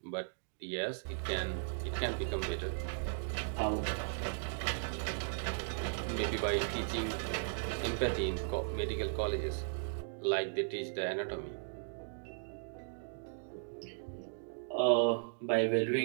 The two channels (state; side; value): silent; left; digital silence